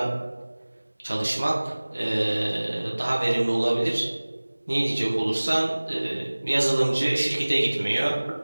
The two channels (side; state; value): both; inverted; correlation -1.00